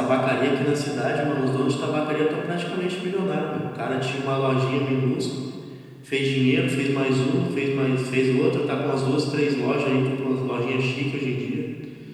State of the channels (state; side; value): identical; both; correlation 1.00